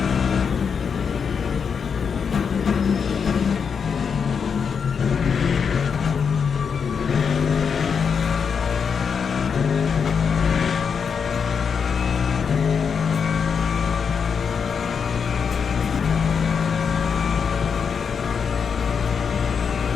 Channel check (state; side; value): quieter; right; 6.4 dB